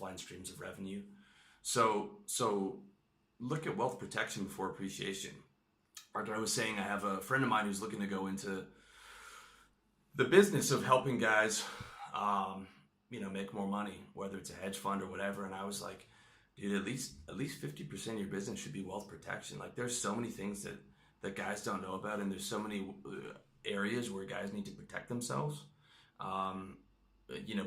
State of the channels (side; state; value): both; identical; correlation 1.00